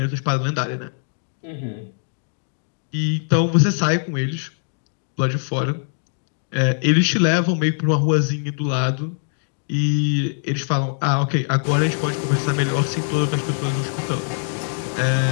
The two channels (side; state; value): right; silent; digital silence